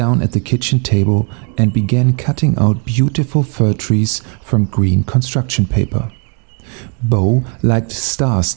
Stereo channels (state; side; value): quieter; left; 36.9 dB